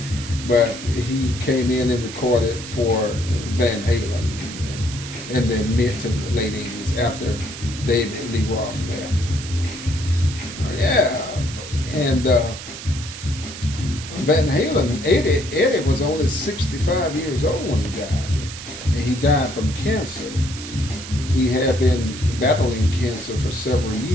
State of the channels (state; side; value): noise; right; hiss, 11 dB below the sound